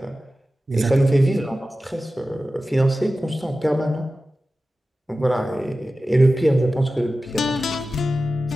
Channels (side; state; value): both; normal; correlation 0.94